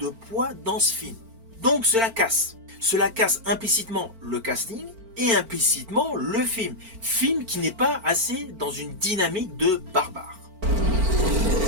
poids dans ce film. Donc cela casse. Cela casse implicitement le casting et implicitement le film. Film qui n'est pas assez dans une dynamique de barbare.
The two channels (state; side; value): late; left; 4.4 ms